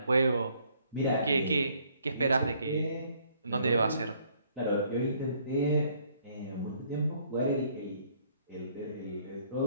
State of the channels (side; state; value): both; inverted; correlation -0.64